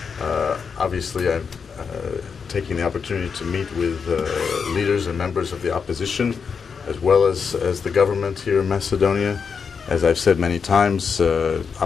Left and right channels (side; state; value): right; quieter; 5.9 dB